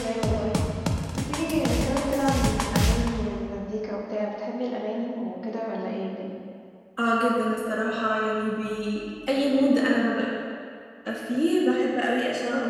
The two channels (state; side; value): identical; both; correlation 1.00